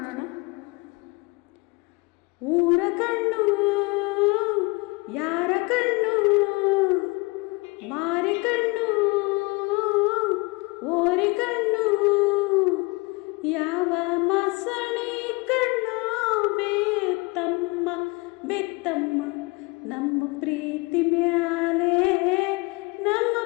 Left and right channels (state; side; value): quieter; right; 26.4 dB